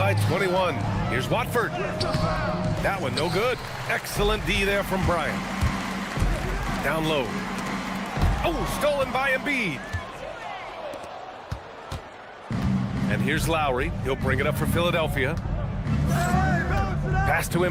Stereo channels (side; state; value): both; identical; correlation 1.00